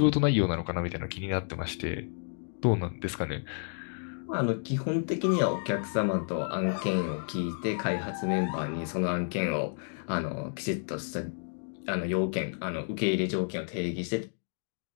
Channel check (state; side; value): silent; right; digital silence